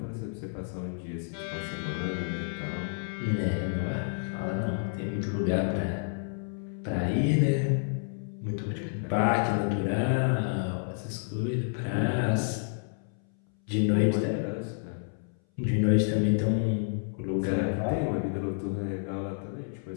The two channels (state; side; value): silent; right; 58 dB below the other